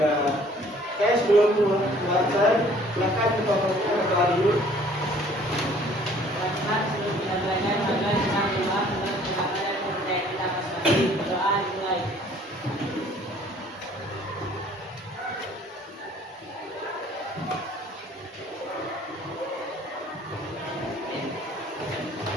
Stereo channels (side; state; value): both; normal; correlation 0.56